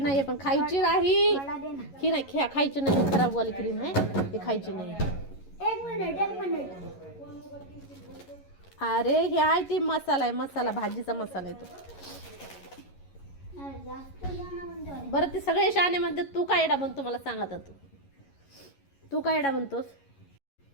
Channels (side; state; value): right; late; 11 ms